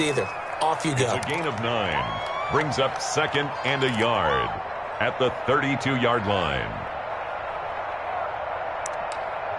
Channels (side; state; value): both; identical; correlation 1.00